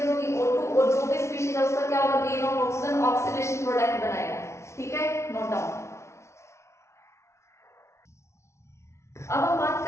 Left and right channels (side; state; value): right; late; 0.13 ms